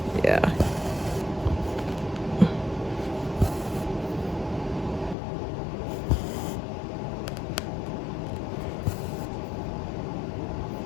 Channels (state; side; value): drops out; right; at 5.2 s